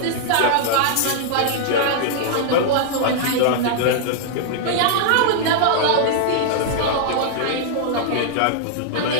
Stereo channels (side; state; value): both; different; correlation -0.01